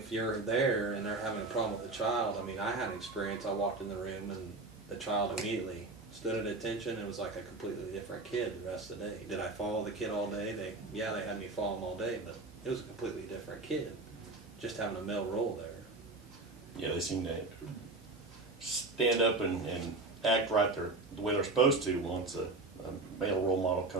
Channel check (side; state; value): left; quieter; 3.3 dB